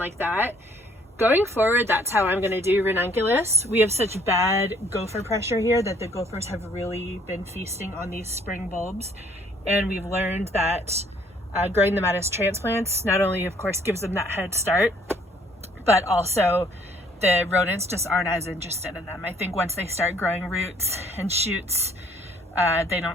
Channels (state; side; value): normal; both; correlation 0.61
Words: that. Going forward, that's how I'm going to do ranunculus. We have such bad gopher pressure here that the gophers have really been feasting on these spring bulbs, and we've learned that growing them out as transplants not only of course gives them that head start, but also the rodents just aren't as interested in them. I think once they start growing roots and shoots, they